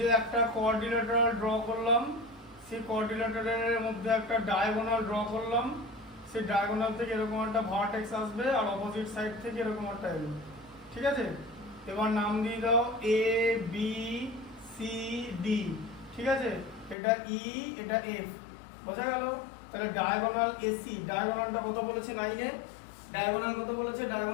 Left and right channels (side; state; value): right; drops out; at 16.9 s